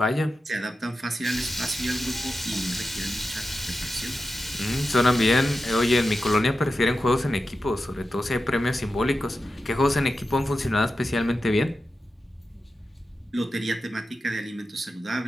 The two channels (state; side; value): normal; both; correlation 0.91